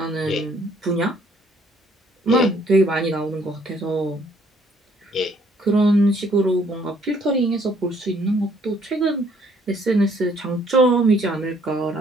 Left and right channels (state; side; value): normal; both; correlation 0.64